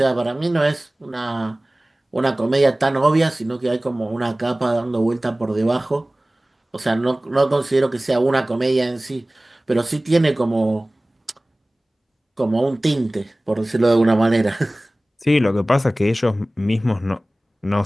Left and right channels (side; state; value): both; normal; correlation 0.98